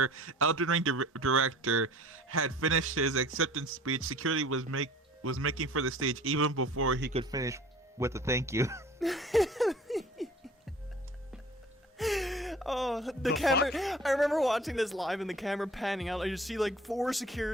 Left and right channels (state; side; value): normal; both; correlation 0.47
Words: Elden Ring director had finished his acceptance speech, security was making for the stage even before he could finish with a thank you. Oh, the camera! Fuck? I remember watching this live and the camera panning out. I just see like 4